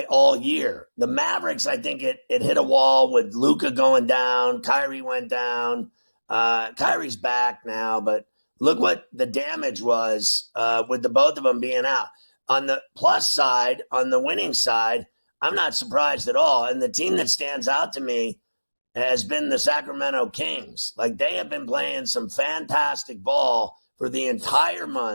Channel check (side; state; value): both; inverted; correlation -1.00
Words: all year. The Mavericks, I think it hit a wall with Luka going down. Kyrie went down. Kyrie's back now, but look what the damage was with the both of them being out. On the plus side, on the winning side, I'm not surprised at all. And the team that stands out to me has been the Sacramento Kings. Like, they have been playing some fantastic ball for the entire